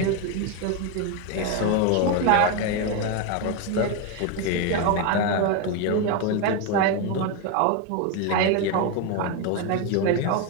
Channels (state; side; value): different; both; correlation 0.02